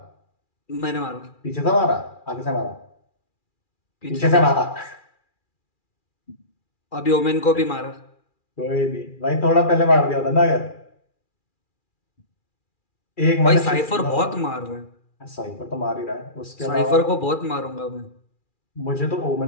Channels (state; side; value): late; right; 2.4 ms